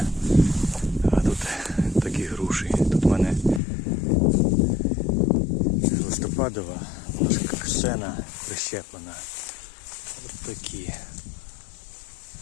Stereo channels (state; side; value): drops out; right; at 3.6 s